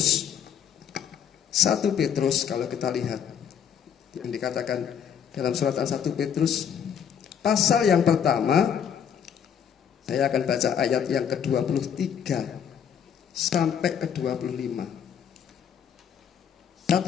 1 Petrus kalau kita lihat yang dikatakan dalam suratan 1 Petrus pasal yang pertama. Saya akan baca ayat yang ke-23 sampai ke-25. 1 1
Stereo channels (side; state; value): right; quieter; 8.3 dB